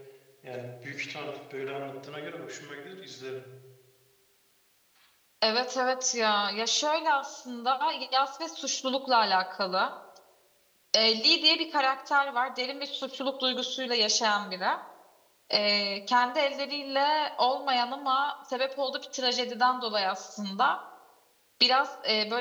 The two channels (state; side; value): identical; both; correlation 1.00